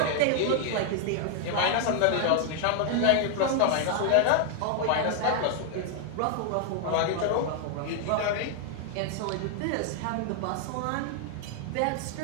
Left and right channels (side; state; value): both; different; correlation 0.00